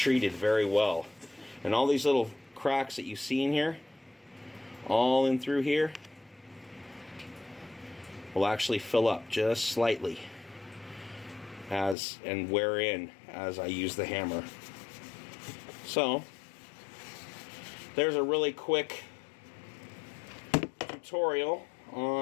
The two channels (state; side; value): drops out; right; at 12.0 s